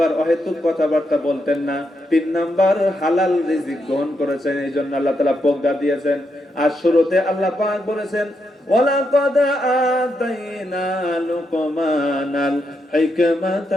অহেতুক কথাবার্তা বলতেন না। তিন নাম্বার হালাল রিজিক গ্রহণ করেছেন, এই জন্য আল্লাহ তাআলা প্রজ্ঞা দিয়েছেন। আর শুরুতে আল্লাহ পাক বলেছেন, ওয়ালাকাদ আতাইনা লুকমানাল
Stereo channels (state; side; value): normal; both; correlation 0.81